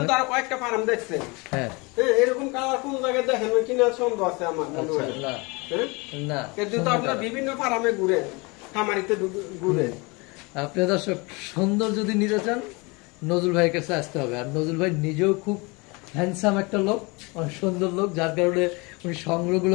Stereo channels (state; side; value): quieter; right; 27.2 dB